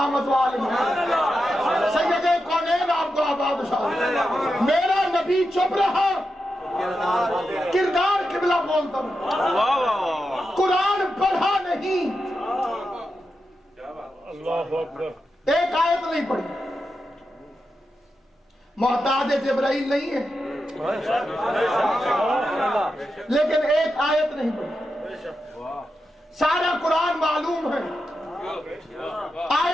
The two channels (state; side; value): normal; both; correlation 0.88